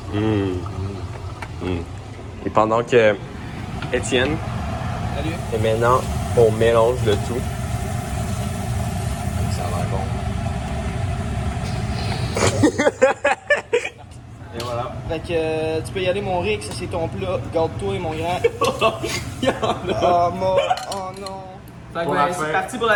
Et pendant que Étienne et maintenant on mélange le tout. Ça a l'air bon. Et voilà. Fait que tu peux y aller, mon Rick. Ça, c'est ton plat. Garde-toi, mon grand. Oh, mon... oh non. Fait que, Pour ben, la c'est fin. parti pour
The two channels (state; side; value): identical; both; correlation 1.00